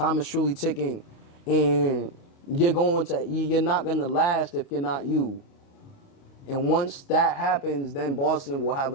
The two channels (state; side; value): late; right; 29 ms